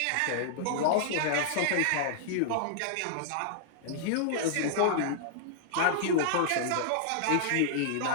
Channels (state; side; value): different; both; correlation -0.01